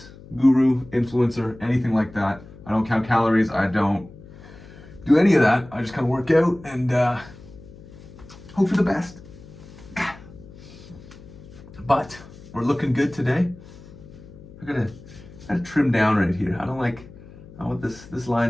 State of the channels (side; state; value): left; noise; hum, 19 dB below the sound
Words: guru, influencer, anything like that. I don't count calories. I don't do any of that. I just kind of work out and hope for the best. But we're looking good today. I gotta trim down right here. I want this